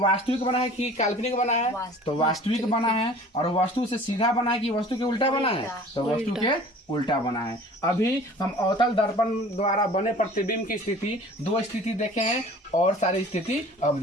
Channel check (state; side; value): normal; both; correlation 0.46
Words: बना है कि काल्पनिक बना है, तो वास्तविक बना है। और वस्तु से सीधा बना है कि वस्तु के उल्टा बना है, तो वस्तु के उल्टा बना है। अभी हम अवतल दर्पण द्वारा बने प्रतिबिंब की स्थिति, दो स्थिति देखे हैं, और सारी स्थिति अब